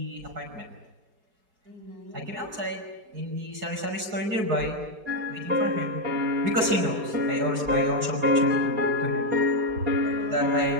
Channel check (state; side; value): late; left; 4.7 ms